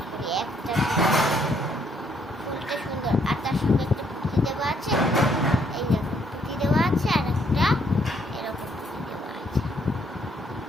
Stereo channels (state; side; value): normal; both; correlation 0.69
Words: করি একটা। ফুলটা সুন্দর, আর তার সঙ্গে একটা পুঁতি দেওয়া আছে। এই দেখুন, পুঁতি দেওয়া আছে, আর একটা এরকম পুঁতি দেওয়া আছে,